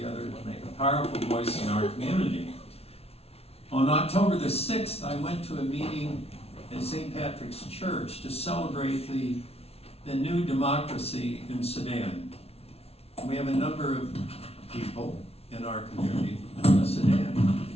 to make a powerful voice in our community. On October the 6th, I went to a meeting at St. Patrick's Church to celebrate the new democracy in Sudan. We have a number of people in our community from Sudan.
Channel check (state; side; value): late; right; 0.30 ms